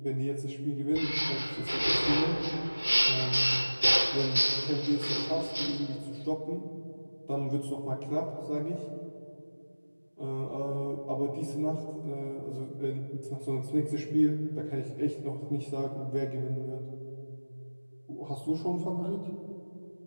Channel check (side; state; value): both; inverted; correlation -1.00